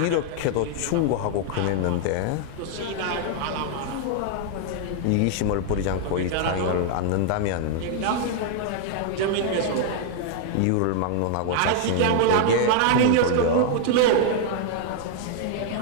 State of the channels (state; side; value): different; both; correlation 0.00